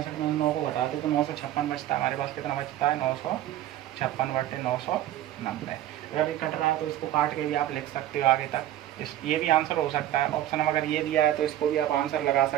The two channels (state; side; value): quieter; left; 13.1 dB